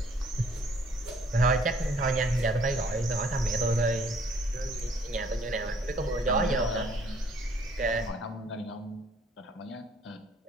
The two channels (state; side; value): normal; both; correlation 0.61